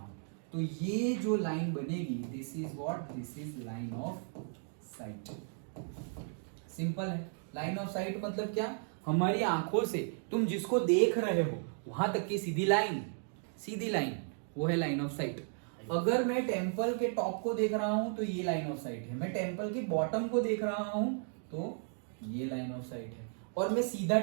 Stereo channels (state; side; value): silent; left; 55 dB below the other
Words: तो ये जो लाइन बनेगी, this is what, this is line of site. Simple है। लाइन ऑफ साइट मतलब क्या? हमारी आंखों से तुम जिसको देख रहे हो वहां तक की सीधी लाइन, सीधी लाइन, वो है लाइन ऑफ साइट। अगर मैं टेम्पल के टॉप को देख रहा हूं तो ये लाइन ऑफ साइट है, मैं टेम्पल के बॉटम को देख रहा हूं तो ये लाइन ऑफ साइट है, और मैं सीधा